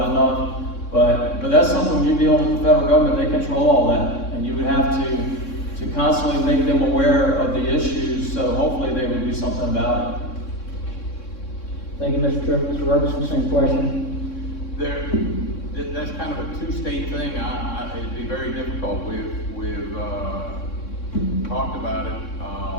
enough. But that's something when you're dealing with the federal government, they control all that. And you would have to constantly make them aware of the issues, so hopefully they would do something about it. Thank you, Mr. Tripp. Mr. Robertson, same question. That's kind of a two-state thing. It'd be very difficult. We've talked about it.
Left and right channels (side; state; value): right; late; 3.6 ms